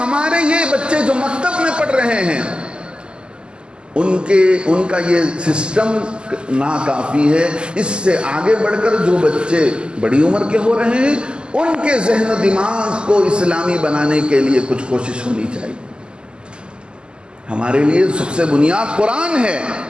یہ بچے جو مکتب میں پڑھ رہے ہیں ان کا یہ سسٹم ناکافی ہے. اس سے آگے بڑھ کر جو بچے بڑی عمر کے ہو رہے ہیں ان کے ذہن و دماغ کو اسلامی بنانے کے لیے کچھ کوشش ہونی چاہیے. ہمارے لیے سب سے بنیاد قرآن ہے.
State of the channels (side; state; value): left; late; 0.049 ms